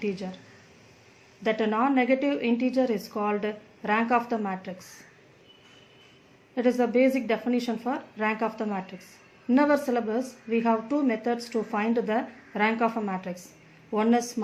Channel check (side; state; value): both; identical; correlation 1.00